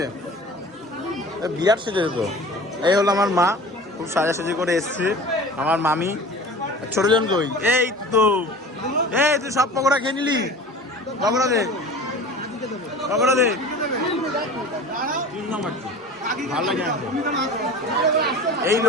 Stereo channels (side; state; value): both; normal; correlation 0.39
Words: বিরাট সেজেছে তো। এই হলো আমার মা, খুব সাজাসাজি করে এসছে। আমার মামি। ছোটজন কই? এই তো। এই তুই সব পকোড়া খেয়ে নিলি? পকোড়া দে, পকোড়া দে। ভালো লাগে।